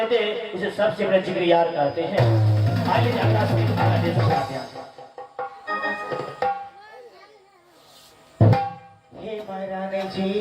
दे उसे सबसे बड़े जिगरियार कहते हैं। आइए अगला दे सकते हैं। हे महारानी जी,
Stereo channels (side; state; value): both; identical; correlation 1.00